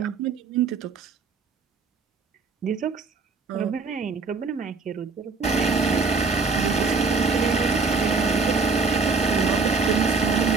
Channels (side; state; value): left; quieter; 4.4 dB